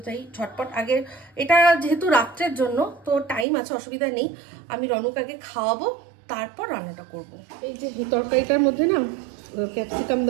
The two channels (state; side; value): drops out; left; at 3.5 s